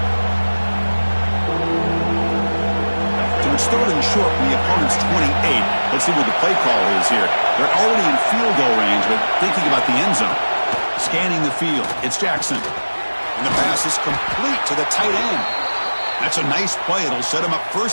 It's 3rd and short from the opponent's 28. Let's see what the play call is here. They're already in field goal range, but thinking about the end zone. Scanning the field. It's Jackson. And the pass is complete to the tight end. That's a nice play. It'll set him up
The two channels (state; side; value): inverted; both; correlation -1.00